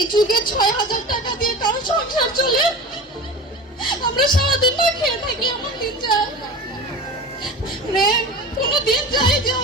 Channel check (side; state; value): both; normal; correlation 0.32